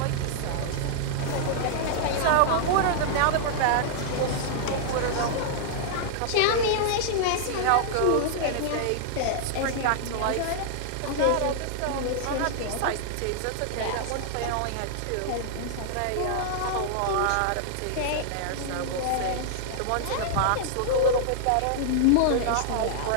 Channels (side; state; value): both; different; correlation -0.01